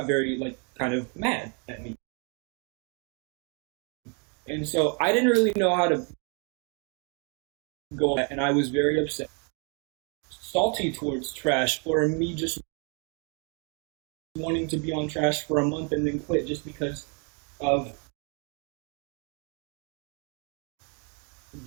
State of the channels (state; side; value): quieter; left; 37.2 dB